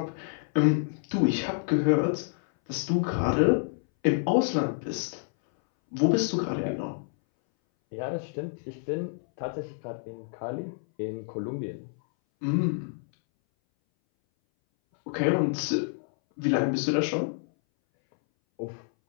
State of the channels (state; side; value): silent; right; 59 dB below the other